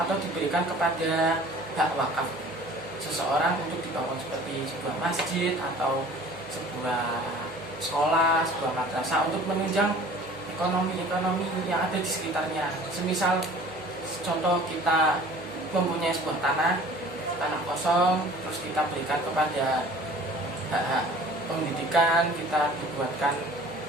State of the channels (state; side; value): noise; right; hum, 25 dB below the sound